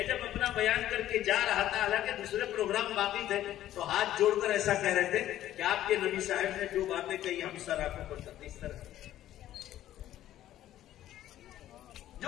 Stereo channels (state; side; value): quieter; right; 12.9 dB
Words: जब अपना बयान करके जा रहा था, हालांकि दूसरे प्रोग्राम बाकी थे, तो हाथ जोड़कर ऐसा कह रहे थे कि आपके नबी साहब ने जो बातें कही हम सर आंखों पर करते। इस तरह